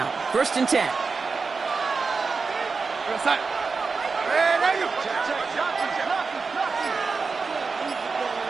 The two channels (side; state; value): left; quieter; 4.6 dB